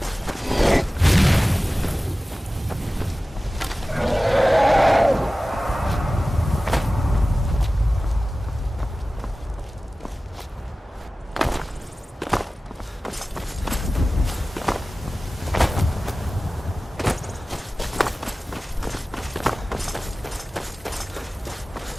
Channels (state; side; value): normal; both; correlation 0.96